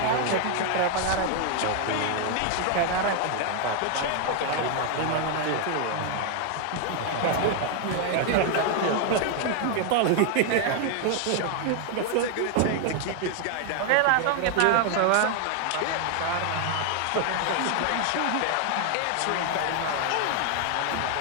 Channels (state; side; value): different; both; correlation 0.00